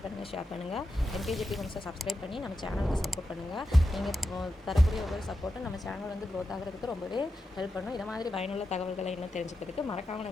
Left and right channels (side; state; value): both; normal; correlation 0.89